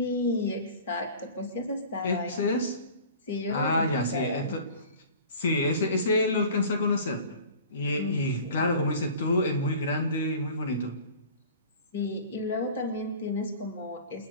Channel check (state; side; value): inverted; both; correlation -0.42